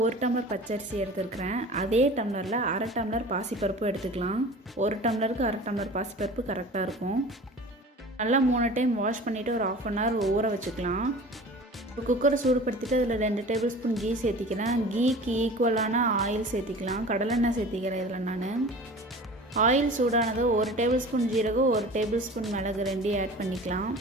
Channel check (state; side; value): normal; both; correlation 0.40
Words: 1 டம்ளர் பச்சரிசி எடுத்துருக்கிறேன். அதே டம்ளரில் அரை டம்ளர் பாசிப்பருப்பு எடுத்துக்கலாம். 1 டம்ளருக்கு அரை டம்ளர் பாசிப்பருப்பு கரெக்டாக இருக்கும். நல்லா 3 டைம் வாஷ் பண்ணிவிட்டு ஒரு 1/2 hour ஊற வச்சுக்கலாம். ஒரு குக்கரை சூடுபடுத்திட்டு அதில் 2 டேபிள் ஸ்பூன் கீ சேர்த்திக்கிறேன். கீக்கு ஈக்குவலான ஆயில் சேர்த்திக்கலாம். கடலெண்ணெய் சேர்த்திக்கிறேன் இதில் நான். ஆயில் சூடானது 1 டேபிள் ஸ்பூன் ஜீரகம், 1 டேபிள் ஸ்பூன் மிளகு 2 ஆட் பண்ணிக்கலாம்.